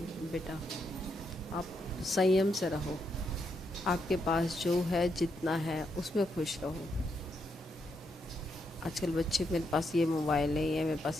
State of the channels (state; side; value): normal; both; correlation 0.80